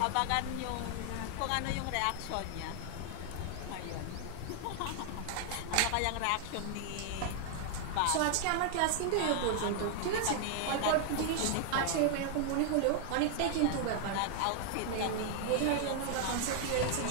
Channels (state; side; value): different; both; correlation 0.00